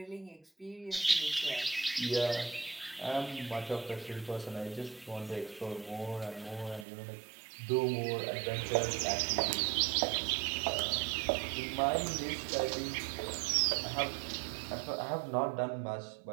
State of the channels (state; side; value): drops out; left; at 6.9 s